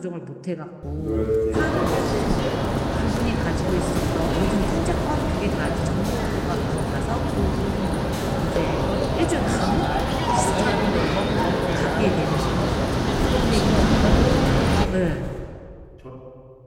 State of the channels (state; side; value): identical; both; correlation 1.00